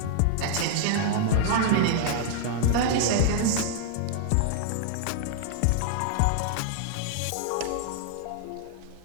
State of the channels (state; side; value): different; both; correlation 0.00